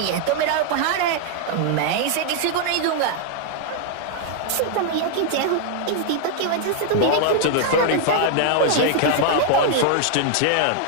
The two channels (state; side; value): different; both; correlation 0.00